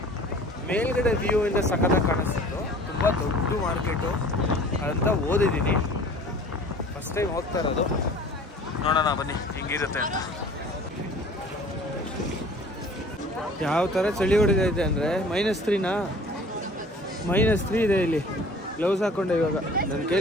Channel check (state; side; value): normal; both; correlation 0.47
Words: ಮೇಲ್ಗಡೆ ವ್ಯೂ ಇಂದ ಸಖತ್ತಾಗಿ ಕಾಣಿಸ್ತಿತ್ತು. ತುಂಬ ದೊಡ್ಡ ಮಾರ್ಕೆಟು ಅಂತ ಓದಿದ್ದೀನಿ. ಫಸ್ಟ್ ಟೈಮ್ ಹೋಗ್ತಾ ಇರೋದು. ನೋಡೋಣ ಬನ್ನಿ ಹೆಂಗಿರುತ್ತೆ ಅಂತ. ಯಾವ ಥರ ಚಳಿ ಹೊಡಿತೈತೆ ಅಂದರೆ -3 ಇದೆ ಇಲ್ಲಿ. ಗ್ಲೌಸ್ ಹಾಕ್ಕೊಂಡೆ ಇವಾಗ. ನನ್ನ